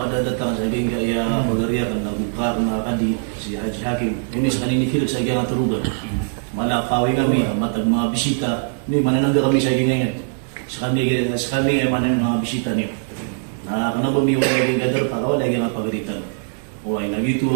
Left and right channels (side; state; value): left; silent; digital silence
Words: datang sa hingga ya pagariya kan nagbuka na kadi si Haji Hakim. Ini sa kanini fil sa gyang turugan. Malakawi kami matag mga bisita ni mananangga kami sa gingan. Sa kami ay manan mga bisita niyo. Na kanabo mi wala gyang gadar para wala gyang pagaritan. O ay nagito